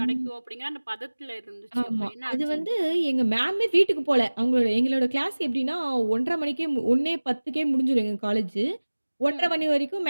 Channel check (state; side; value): inverted; both; correlation -1.00